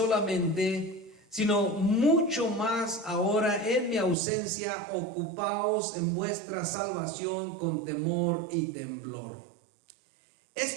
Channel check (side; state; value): left; drops out; at 4.2 s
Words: sino mucho más ahora en mi ausencia, ocupaos en vuestra salvación con temor y temblor.